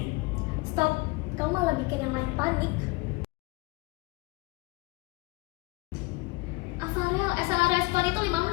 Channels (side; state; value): right; quieter; 24.4 dB